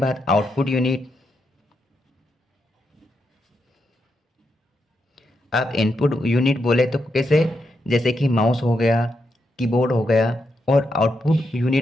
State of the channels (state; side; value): normal; both; correlation 0.83